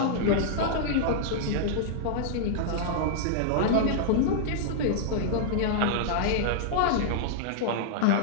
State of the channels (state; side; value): different; both; correlation -0.01